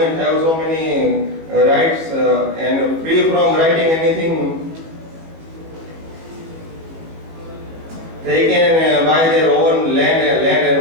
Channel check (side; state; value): left; late; 19 ms